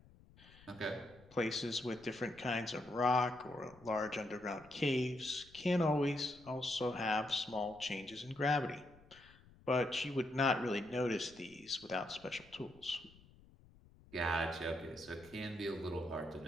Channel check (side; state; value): left; noise; rumble, 24 dB below the sound